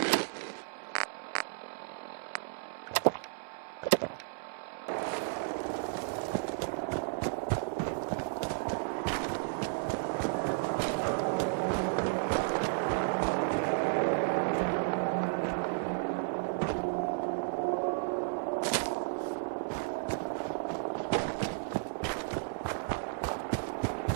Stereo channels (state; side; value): silent; left; digital silence